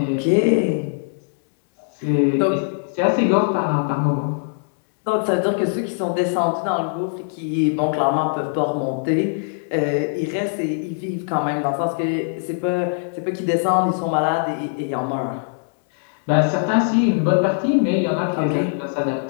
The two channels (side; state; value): right; silent; digital silence